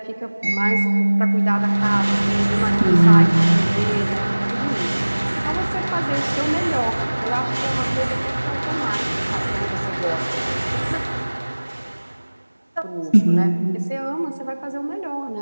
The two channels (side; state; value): both; inverted; correlation -1.00